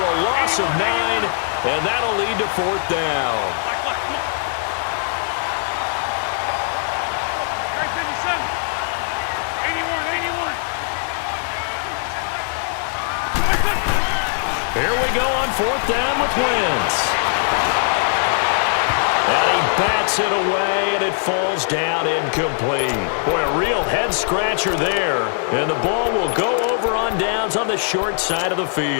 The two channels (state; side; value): silent; right; digital silence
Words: loss of 9, and that'll lead to 4th down. Here we go on 4th down with Wentz. And he bats it away, and it falls down incomplete. Boy, a real head-scratcher there. And the ball will go over on downs on the short side of the